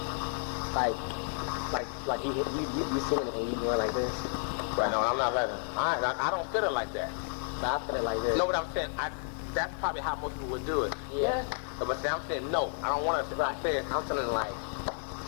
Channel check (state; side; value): silent; right; 57 dB below the other